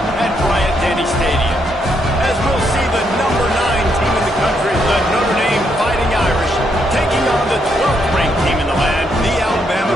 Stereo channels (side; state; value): both; normal; correlation 0.77